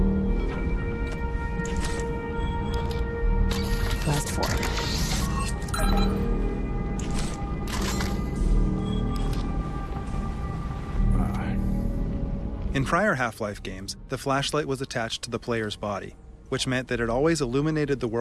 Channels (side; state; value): both; identical; correlation 1.00